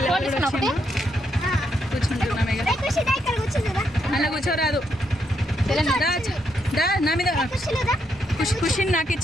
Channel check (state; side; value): normal; both; correlation 0.78